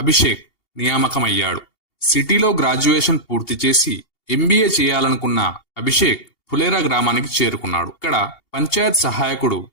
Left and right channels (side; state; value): right; late; 2.8 ms